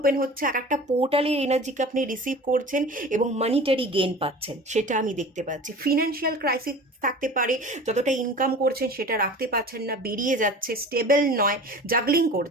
হচ্ছে, এক একটা পোর্টালের এনার্জিকে আপনি রিসিভ করছেন এবং মানিটারি গেইন পাচ্ছেন, সেটা আমি দেখতে পাচ্ছি। ফিনান্সিয়াল ক্রাইসিস থাকতে পারে, যতটা ইনকাম করছেন সেটা রাখতে পারছেন না, বেরিয়ে যাচ্ছে, স্টেবল নয়, জাগলিং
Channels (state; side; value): normal; both; correlation 0.39